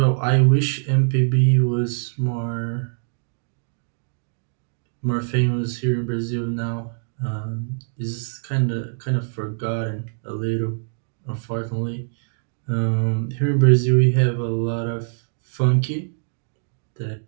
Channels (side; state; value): left; silent; digital silence